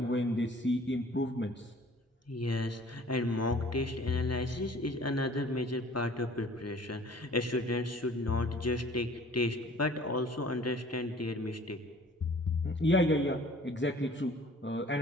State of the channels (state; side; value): normal; both; correlation 0.51